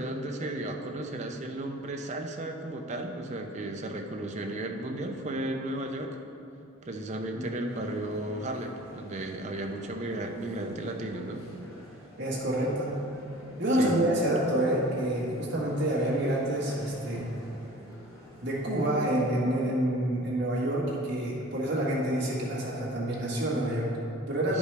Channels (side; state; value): both; normal; correlation 0.46